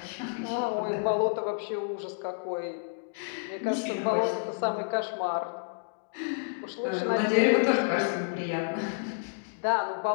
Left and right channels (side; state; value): right; silent; digital silence